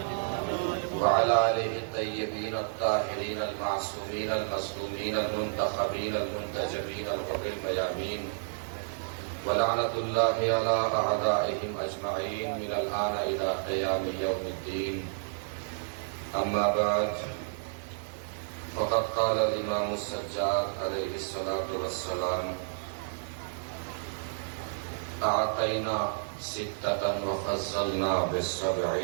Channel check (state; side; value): silent; left; digital silence